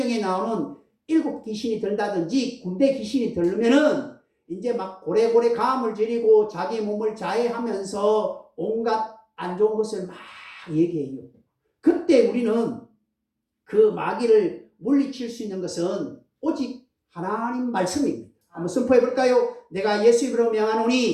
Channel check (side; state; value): both; identical; correlation 1.00